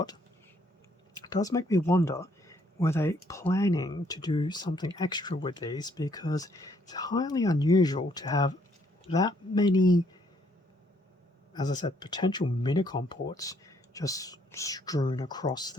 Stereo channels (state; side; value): normal; both; correlation 0.68